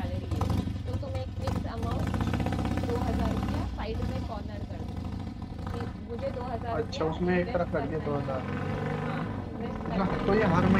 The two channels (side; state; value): both; identical; correlation 1.00